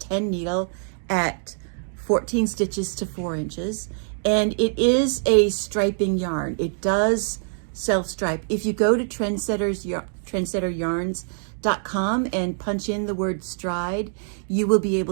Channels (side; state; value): left; silent; digital silence